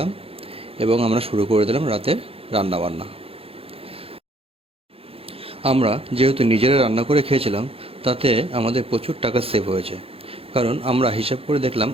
এবং আমরা শুরু করে দিলাম রাতের রান্নাবান্না। আমরা যেহেতু নিজেরা রান্না করে খেয়েছিলাম তাতে আমাদের প্রচুর টাকা সেভ হয়েছে, কারণ আমরা হিসাব করে দেখলাম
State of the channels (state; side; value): late; left; 0.28 ms